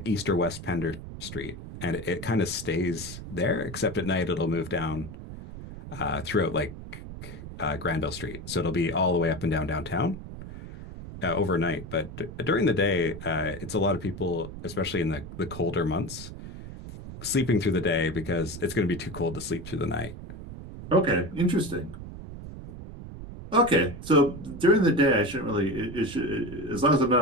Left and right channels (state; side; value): noise; right; rumble, 11 dB below the sound